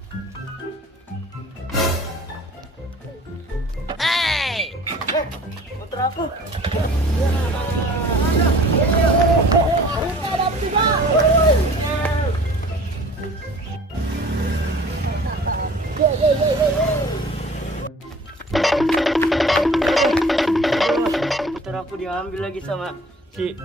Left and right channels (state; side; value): normal; both; correlation 0.47